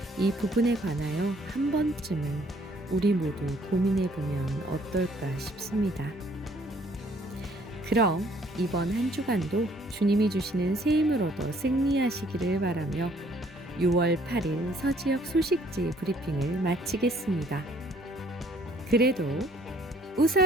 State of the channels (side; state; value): both; normal; correlation 0.61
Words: 이 부분에 관하여 한 번쯤은 우리 모두 고민해 보면 어떨까 싶습니다. 그럼 이번 한 주간도 주님이 주시는 새 힘을 얻어 승리하시기를 바라며 6월 8일 서지역 소식지 브리핑을 마치겠습니다. 그래도